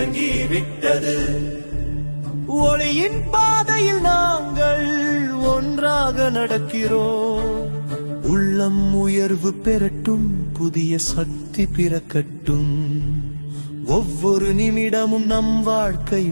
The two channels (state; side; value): inverted; both; correlation -1.00